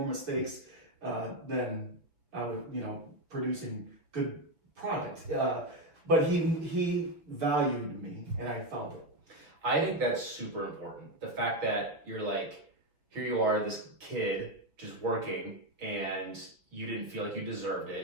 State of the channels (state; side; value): late; left; 6.1 ms